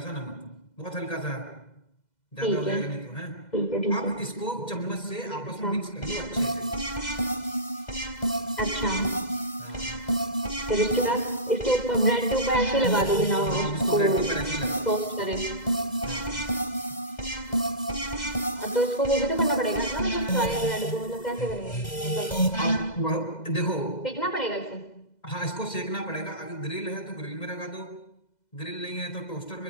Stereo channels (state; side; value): late; right; 2.0 ms